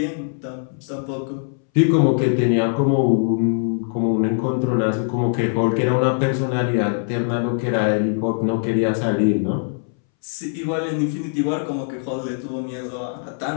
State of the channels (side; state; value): right; silent; 63 dB below the other